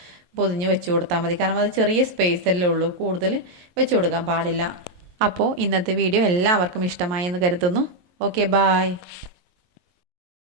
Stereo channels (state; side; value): late; left; 22 ms